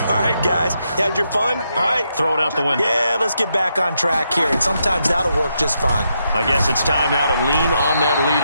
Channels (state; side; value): inverted; both; correlation -0.81